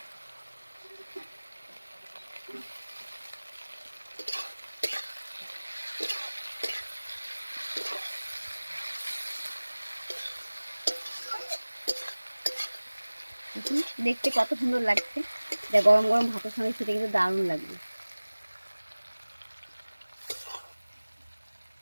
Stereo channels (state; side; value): inverted; both; correlation -1.00